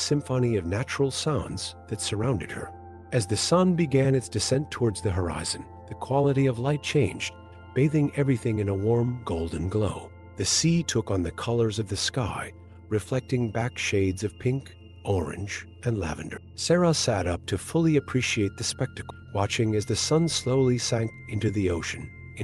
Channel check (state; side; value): identical; both; correlation 1.00